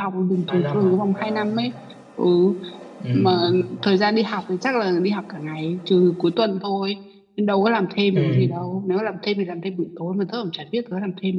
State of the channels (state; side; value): identical; both; correlation 1.00